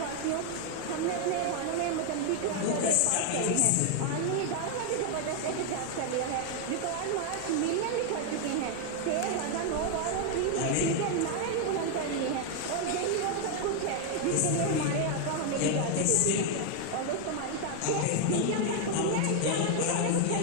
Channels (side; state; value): both; different; correlation 0.00